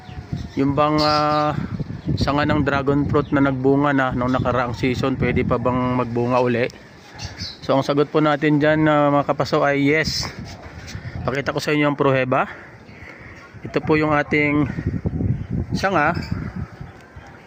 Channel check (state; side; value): identical; both; correlation 1.00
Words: yung bang sanga ng dragon fruit na nagbunga na nung nakaraang season, pwede pa bang magbunga uli? So ang sagot po natin dyan mga kapaso ay yes. Pakita ko sa inyo ang pruheba. Ito po yung ating sanga.